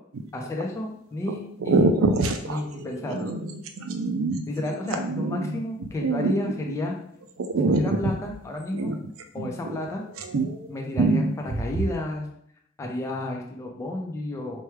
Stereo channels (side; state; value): both; normal; correlation 0.50